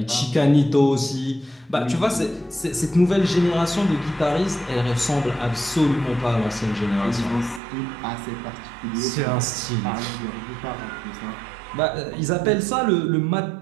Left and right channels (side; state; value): left; drops out; at 7.6 s